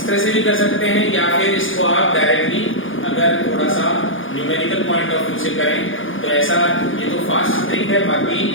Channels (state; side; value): late; right; 0.58 ms